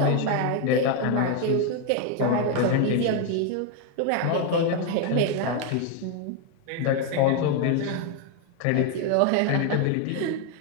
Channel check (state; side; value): different; both; correlation 0.01